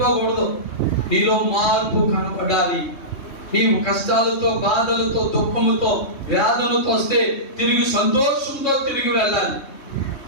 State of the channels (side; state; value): right; late; 3.2 ms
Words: నీలో మార్పు కనపడాలి. నీవు కష్టాలతో, బాధలతో, దుఃఖముతో, వ్యాధులతో వస్తే తిరిగి సంతోషంతో తిరిగి వెళ్ళాలి.